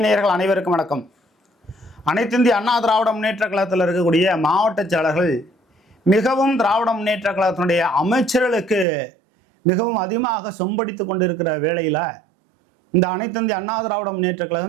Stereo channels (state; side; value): drops out; left; at 8.8 s